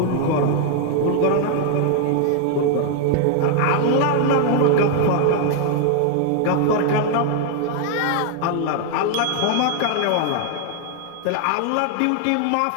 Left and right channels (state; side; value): different; both; correlation 0.00